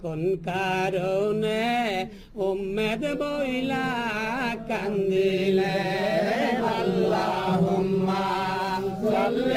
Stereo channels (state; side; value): identical; both; correlation 1.00